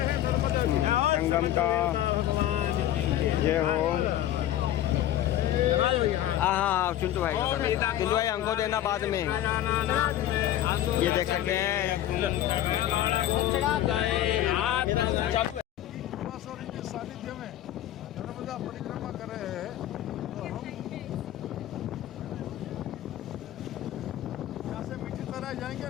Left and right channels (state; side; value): quieter; right; 12.6 dB